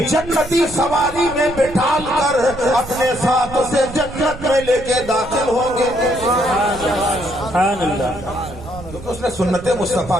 جنتی سواری میں بٹھال کر اپنے ساتھ اسے جنت میں لے کے داخل ہوں گے. کیونکہ اس نے سنت مصطفیٰ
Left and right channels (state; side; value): noise; right; rumble, 14 dB below the sound